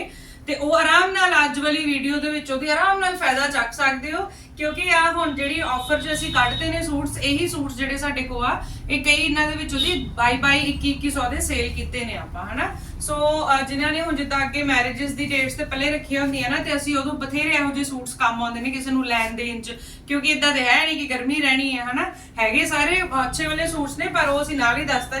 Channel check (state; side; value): identical; both; correlation 1.00